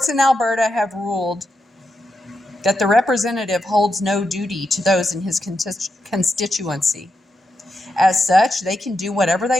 in Alberta have ruled that the representative holds no duty to those in his constituency. As such, they can do whatever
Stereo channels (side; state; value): both; normal; correlation 0.85